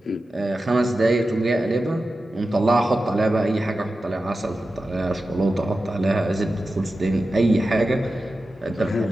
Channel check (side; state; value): both; normal; correlation 0.93